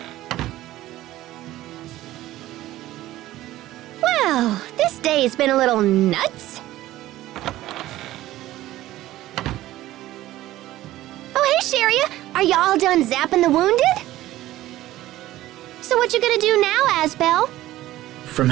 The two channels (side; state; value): left; quieter; 15.3 dB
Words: Well, this day's been a little nuts. Oh, hey, Sharia. Are you all done zapping the wounded? So what you gonna do now, Asbel? From